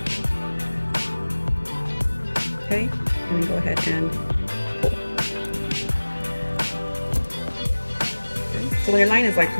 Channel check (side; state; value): both; inverted; correlation -1.00